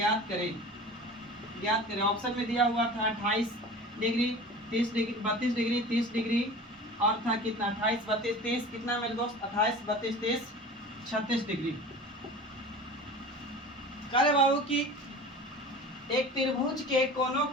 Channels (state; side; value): normal; both; correlation 0.38